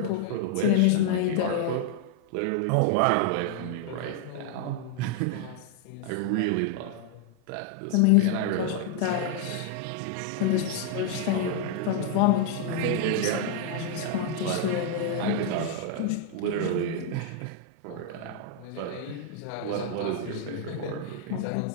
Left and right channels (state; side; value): different; both; correlation 0.00